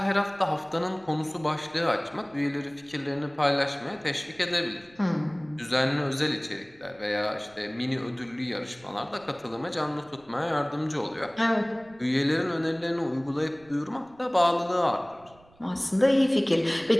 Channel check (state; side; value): noise; right; rumble, 27 dB below the sound